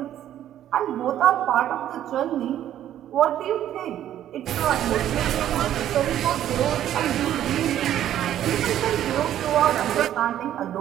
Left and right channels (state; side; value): quieter; left; 11.5 dB